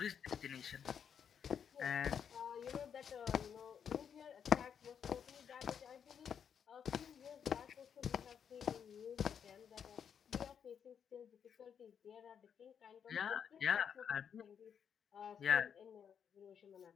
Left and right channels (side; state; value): right; quieter; 7.8 dB